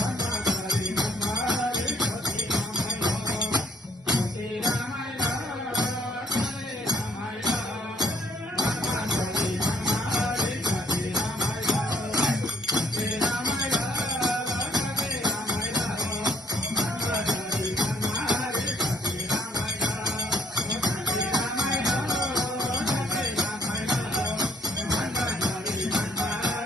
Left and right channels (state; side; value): normal; both; correlation 0.65